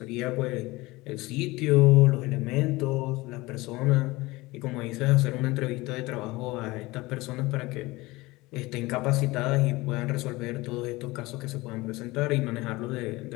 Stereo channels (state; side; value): quieter; right; 21.2 dB